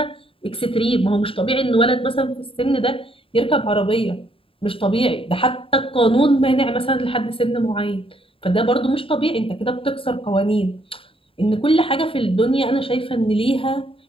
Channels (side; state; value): right; late; 0.26 ms